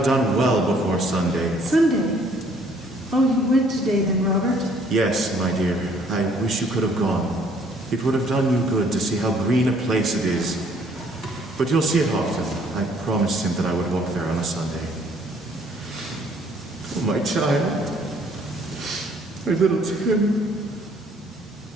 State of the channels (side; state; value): both; normal; correlation 0.62